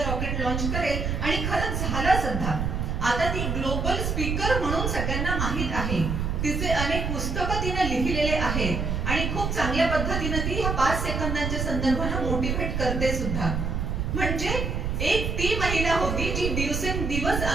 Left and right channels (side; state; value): right; noise; rumble, 1 dB below the sound